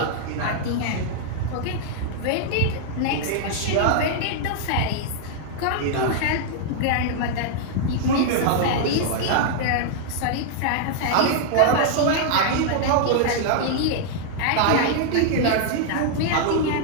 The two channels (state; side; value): different; both; correlation -0.01